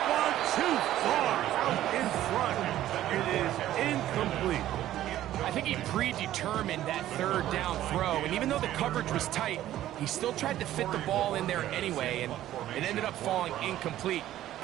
one too far out in front. It is incomplete. I think he predetermined that 3rd down throw, and even though the coverage was tight, he still tried to fit the ball in there anyway, and it ended up falling incomplete.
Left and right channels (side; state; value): left; quieter; 13.3 dB